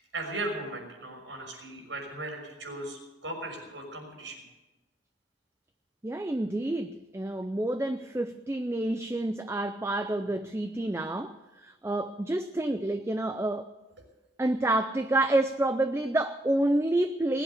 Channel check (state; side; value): normal; both; correlation 0.76